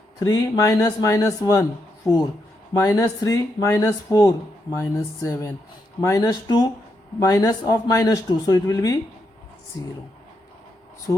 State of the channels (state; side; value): normal; both; correlation 0.81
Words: 3 minus minus 1, 4, minus 3 minus 4, minus 7, minus 2 minus of minus 2, so it will be 0.